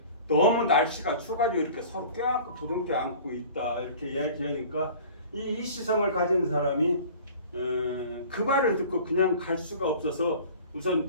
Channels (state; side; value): inverted; both; correlation -0.43